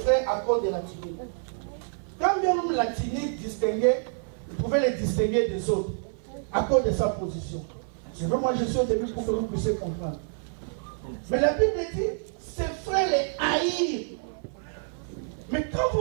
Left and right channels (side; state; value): left; silent; 56 dB below the other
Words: à cause de la tunique. Quand même la tunique distinguait, il pouvait les distinguer des autres à cause de sa position. C'est vrai, moi je suis au début pour que vous puissiez comprendre. Mais la Bible dit, ses frères les haïrent. Mais quand